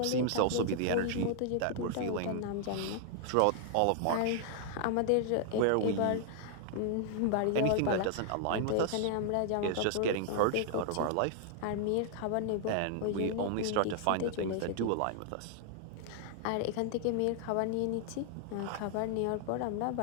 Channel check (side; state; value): both; different; correlation 0.00